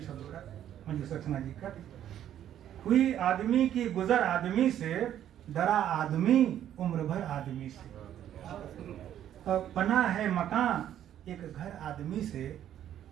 शब्द का, मंजू सक्सेना जी का, कोई आदमी की गुजर आदमी से, डरा आदमी उम्र भर आदमी से। बना है मकान एक घर आदमी से,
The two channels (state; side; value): quieter; left; 10.9 dB